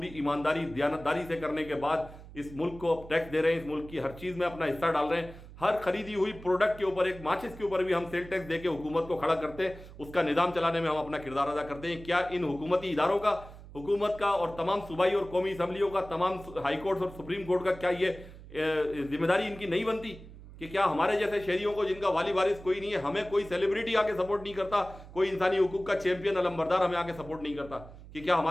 ईमानदारी दयानतदारी से करने के बाद इस मुल्क को टैक्स दे रहे हैं, इस मुल्क की हर चीज़ में अपना हिस्सा डाल रहे हैं। हर खरीदी हुई प्रोडक्ट के ऊपर, एक माचिस के ऊपर भी हम सेल टैक्स देके हुकूमत को खड़ा करते हैं, उसका निज़ाम चलाने में हम अपना किरदार अदा करते हैं। क्या इन हुकूमती इदारों का, हुकूमत का और तमाम सूबाई और कौमी असम्बलियों का, तमाम हाई कोर्ट और सुप्रीम कोर्ट का, क्या ये जिम्मेदारी इनकी नहीं बनती कि क्या हमारे जैसे शहरियों को, जिनका वाली वारिस कोई नहीं है, हमें कोई सेलिब्रिटी आके सपोर्ट नहीं करता, कोई इंसानी हुकूक का चैंपियन अलंबरदार हमें आके सपोर्ट नहीं करता, कि क्या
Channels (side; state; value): right; noise; hum, 17 dB below the sound